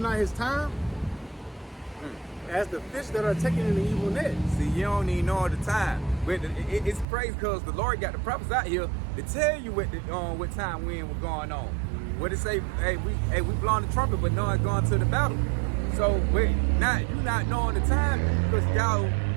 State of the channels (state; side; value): drops out; left; at 7.1 s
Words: his time, as the fish that are taken in the evil net. See, you don't even know the time. But it's crazy because the Lord got the prophets out here to tell you what time when was going on. What it say? Hey, we blowing the trumpet, but no one's going to the battle. So wait, you not knowing the time because